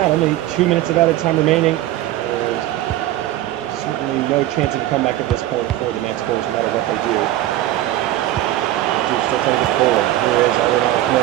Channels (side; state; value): left; quieter; 14.5 dB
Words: Only 2 minutes of added time remaining. There's certainly no chance of a comeback at this point for the Manticores, no matter what they do. Duke's still trying to get forward. Here is Alvin